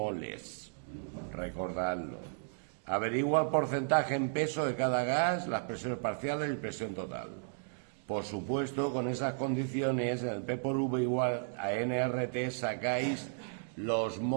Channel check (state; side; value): silent; left; digital silence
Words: Recordadlo. Averigua el porcentaje en peso de cada gas, las presiones parciales y presión total. Por supuesto, con esas condiciones, en el P por V igual a nRT sacáis los